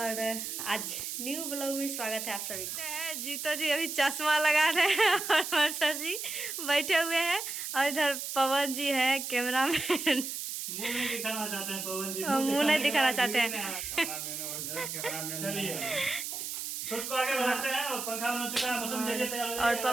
आज न्यू ब्लॉग में स्वागत है आप सभी को। जीतो जी अभी चश्मा लगा रहे हैं और सर जी बैठे हुए हैं और इधर पवन जी है कैमरामैन। मुंह नहीं दिखाना चाहते हैं पवन जी, मुंह नहीं दिखाना चाहते हैं। चलिए शूट को आगे बढ़ाते हैं और पंखा बन चुका है, मौसम जल्दी तैयार हो जाएगा। और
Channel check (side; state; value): right; noise; hiss, 5 dB below the sound